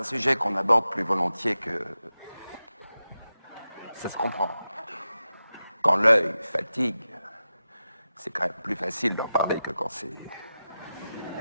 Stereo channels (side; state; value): both; inverted; correlation -0.92